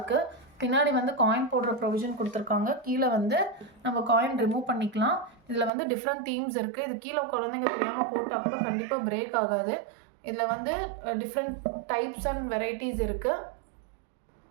பின்னாடி வந்து காயின் போடுற ப்ரொவிஷன் கொடுத்துருக்காங்க. கீழே வந்து நம்ம காயின் ரிமூவ் பண்ணிக்கலாம். இதில் வந்து டிஃப்ரெண்ட் தீம்ஸ் இருக்குது. இது கீழே குழந்தைங்க தெரியாமல் போட்டால் கூட கண்டிப்பாக பிரேக் ஆகாது. இதில் வந்து டிஃப்ரெண்ட் டைப்ஸ் அண்ட் வெரைட்டிஸ் இருக்குது.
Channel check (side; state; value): left; drops out; at 5.7 s